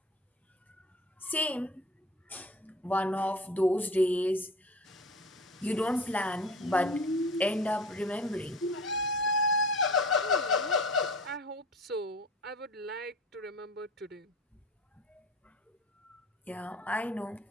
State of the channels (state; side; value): normal; both; correlation 0.37